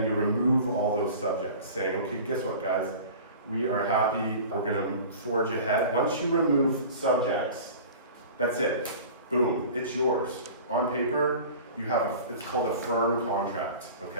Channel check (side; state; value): both; inverted; correlation -0.39